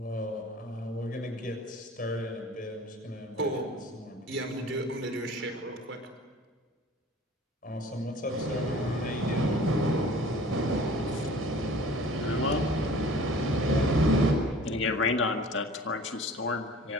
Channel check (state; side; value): normal; both; correlation 0.46